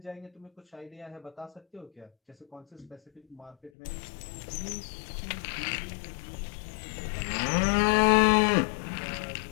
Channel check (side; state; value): right; drops out; at 3.7 s